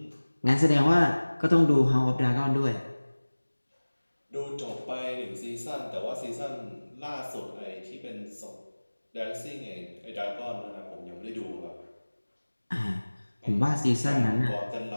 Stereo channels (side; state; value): both; inverted; correlation -1.00